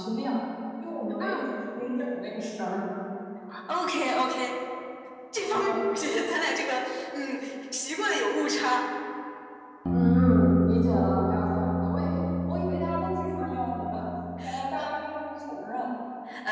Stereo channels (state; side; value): identical; both; correlation 1.00